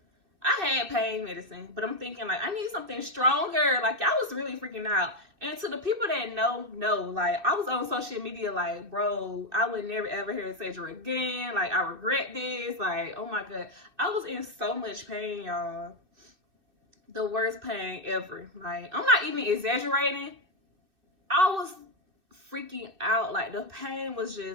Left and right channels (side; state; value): left; late; 2.6 ms